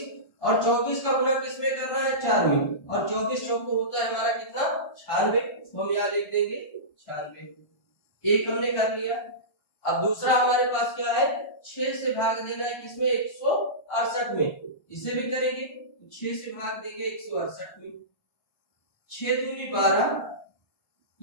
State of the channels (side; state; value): right; late; 1.3 ms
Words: और 24 का गुना किसमें कर रहा है, 4 में, और 24 चौको होता है हमारा कितना, 96। तो हम यहाँ लिख देंगे 96। एक हमने कर लिया। अब दूसरा हमारे पास क्या है, 6 से भाग देना है किसमें, 168 में। इसे भी करेंगे, 6 से भाग देंगे 168 में। 6 दूनी 12,